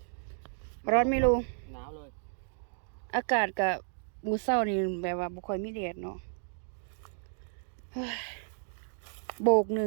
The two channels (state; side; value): silent; left; digital silence